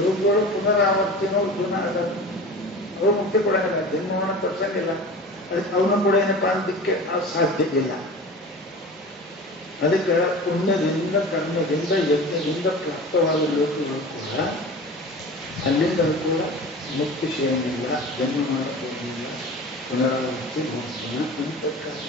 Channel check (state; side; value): normal; both; correlation 0.35